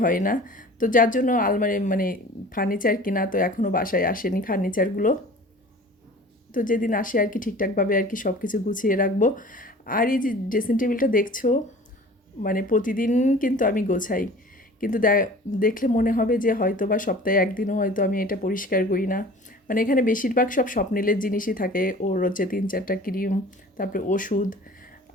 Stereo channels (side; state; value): both; normal; correlation 0.43